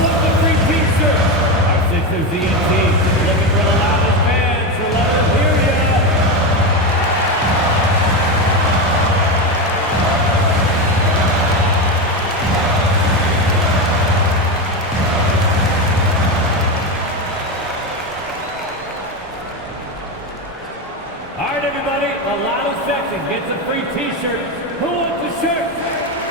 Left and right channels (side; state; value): both; normal; correlation 0.14